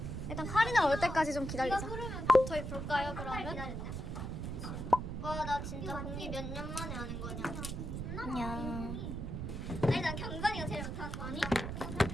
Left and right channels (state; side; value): noise; right; rumble, 5 dB below the sound